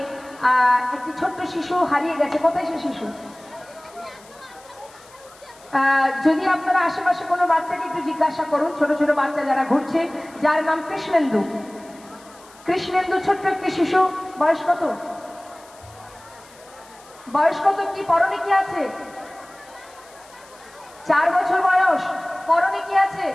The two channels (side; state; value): left; noise; hiss, 25 dB below the sound